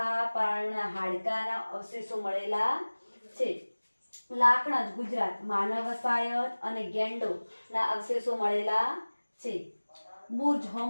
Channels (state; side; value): inverted; both; correlation -1.00